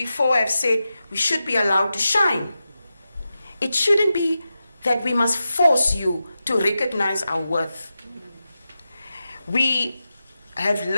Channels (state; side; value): inverted; both; correlation -0.91